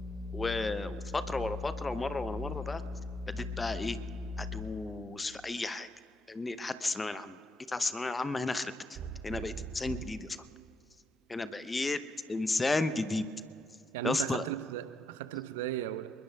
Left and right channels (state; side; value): normal; both; correlation 0.79